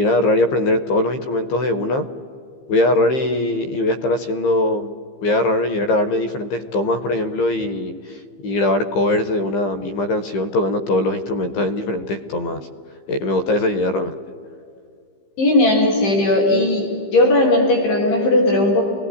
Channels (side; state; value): right; late; 15 ms